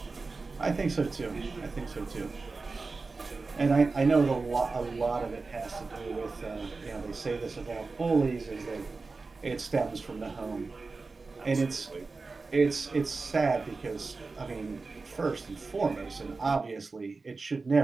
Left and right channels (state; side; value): quieter; left; 4.0 dB